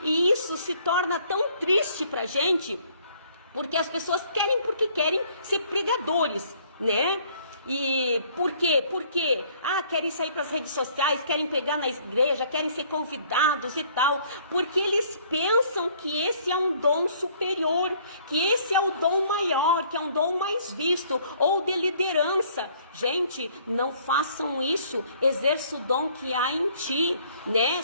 e isso se torna tão triste pra gente, porque as pessoas querem porque querem ser pregadores, né? E por quê? Porque querem sair para as redes sociais, querem pregar na igreja, querem ser convidados e tal, porque eles pensam que esse é um dom superior, que esse é o dom maior, que é um dom mais visto, ou de liderança. Gente, não façam isso. Exerça o dom que há em ti, né?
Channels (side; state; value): both; inverted; correlation -0.60